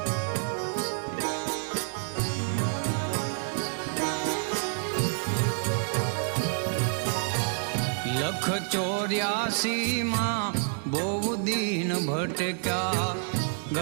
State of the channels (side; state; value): left; silent; 59 dB below the other